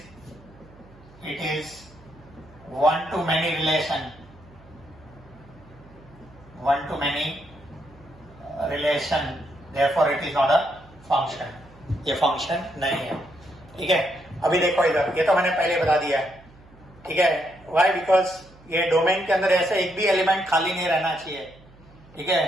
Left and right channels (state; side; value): noise; right; hum, 25 dB below the sound